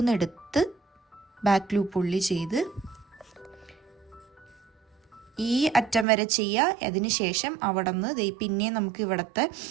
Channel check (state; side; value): drops out; left; at 6.1 s